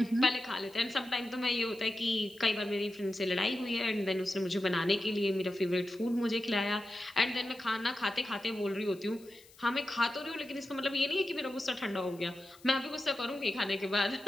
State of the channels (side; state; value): left; noise; hiss, 25 dB below the sound